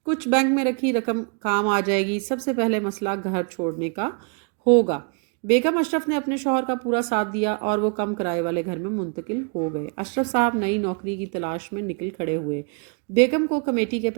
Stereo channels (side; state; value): left; quieter; 38.1 dB